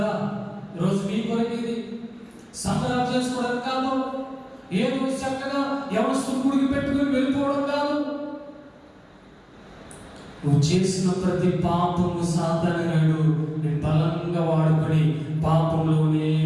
ఈరోజు మీ కొరకేది సంబరాలు చేసుకోవడం కాదు, ఏదో చక్కగా ఎవరు గుడికి పెట్టుకుని వెళ్ళిపోవడం కాదు. నువ్వు చేసిన ప్రతి పాపము సాధారణడు నేను బలంగా వాడుకొని పాపంలోనే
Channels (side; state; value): both; identical; correlation 1.00